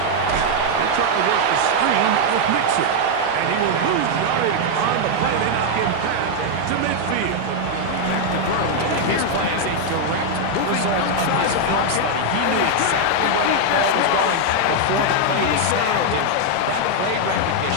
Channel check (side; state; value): both; different; correlation 0.00